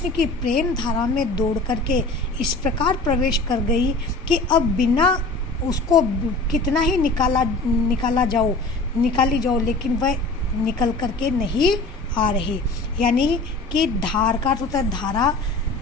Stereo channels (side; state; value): right; quieter; 3.2 dB